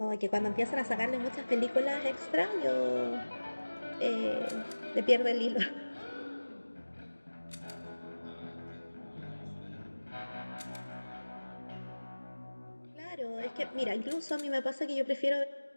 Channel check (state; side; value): inverted; both; correlation -1.00